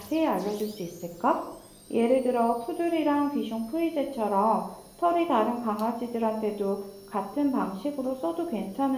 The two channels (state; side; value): identical; both; correlation 1.00